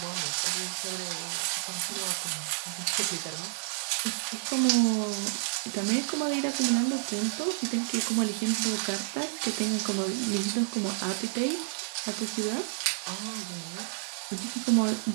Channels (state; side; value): silent; left; 58 dB below the other